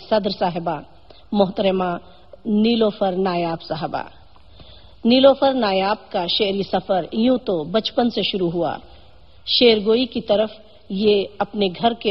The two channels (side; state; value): both; identical; correlation 1.00